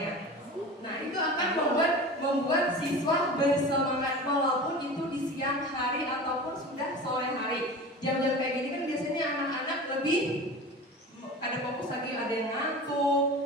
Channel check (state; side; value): normal; both; correlation 0.34